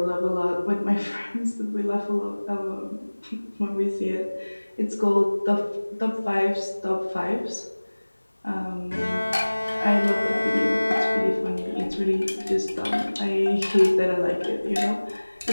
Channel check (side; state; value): both; inverted; correlation -1.00